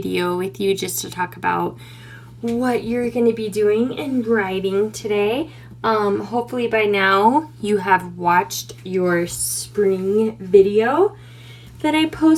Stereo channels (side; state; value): both; identical; correlation 1.00